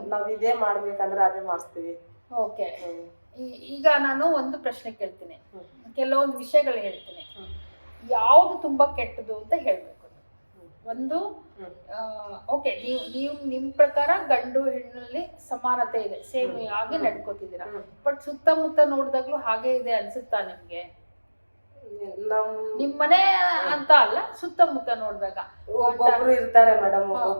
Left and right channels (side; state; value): both; inverted; correlation -1.00